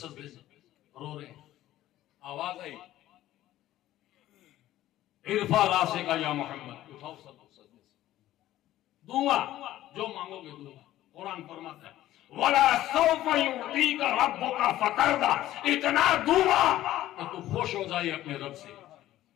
سے رو رہے ہیں، آواز آئی ارفع راسک یا محمد، اٹھاؤ سجدے سے، دوں گا جو مانگو گے دوں گا۔ قرآن فرماتا ہے وَلَا سَوْفَ يُعْطِيكَ رَبُّكَ فَتَرْضَىٰ، اتنا دوں گا کہ تو خوش ہو جائے اپنے رب سے،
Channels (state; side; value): quieter; right; 14.2 dB